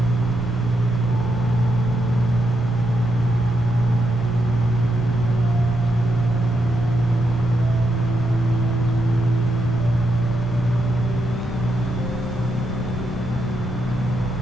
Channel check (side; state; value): both; normal; correlation 0.82